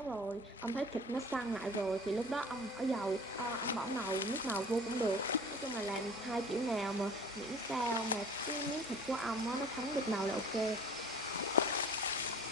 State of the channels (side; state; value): both; normal; correlation 0.44